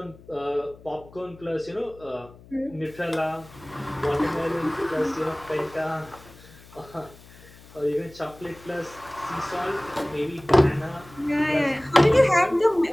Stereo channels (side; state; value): left; noise; hum, 22 dB below the sound